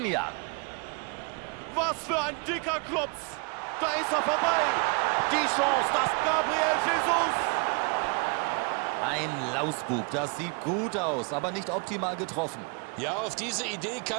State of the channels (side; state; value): left; quieter; 34.6 dB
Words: Was für ein dicker Klopf. Da ist er vorbei. Die Chance, das Gabriel Jesus. Ein Lausbub, das sieht gut aus, aber nicht optimal getroffen. Ja, auf diese Idee